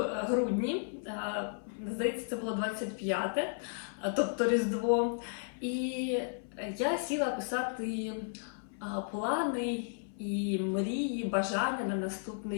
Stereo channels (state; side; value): silent; right; 55 dB below the other